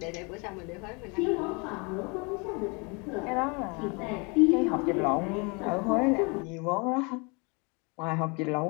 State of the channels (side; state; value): right; quieter; 30.8 dB